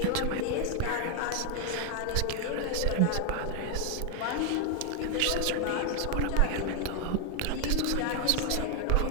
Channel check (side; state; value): both; different; correlation 0.00